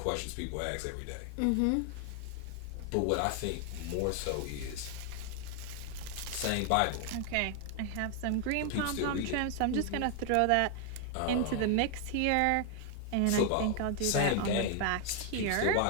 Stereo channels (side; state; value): both; different; correlation 0.00